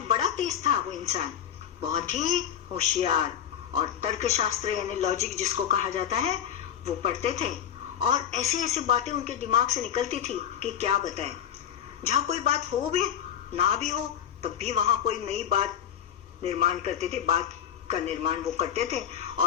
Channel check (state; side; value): quieter; right; 9.5 dB